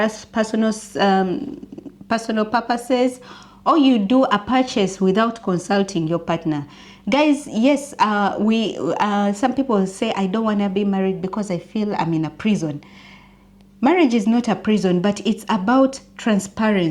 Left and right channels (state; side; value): identical; both; correlation 1.00